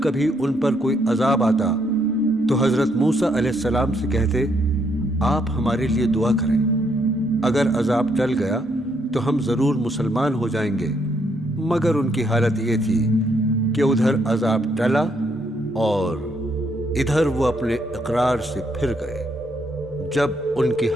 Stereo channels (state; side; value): normal; both; correlation 0.73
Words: کبھی ان پر کوئی عذاب آتا تو حضرت موسیٰ علیہ السلام سے کہتے، آپ ہمارے لیے دعا کریں، اگر عذاب ٹل گیا تو ہم ضرور مسلمان ہو جائیں گے۔ مگر ان کی حالت یہ تھی کہ ادھر عذاب ٹلا اور ادھر وہ اپنے اقرار سے پھر گئے۔ جب ان کی